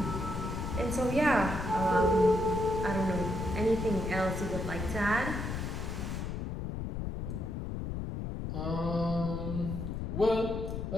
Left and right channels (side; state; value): left; noise; rumble, 4 dB below the sound